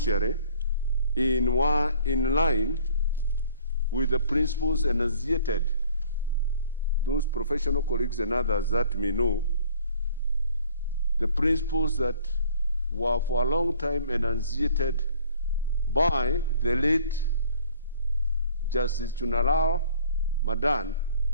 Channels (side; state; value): both; inverted; correlation -0.53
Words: in line with the principles enunciated. Those professional colleagues and others that may know, the principles that were for a long time enunciated by the late Justice Chunalao Madan.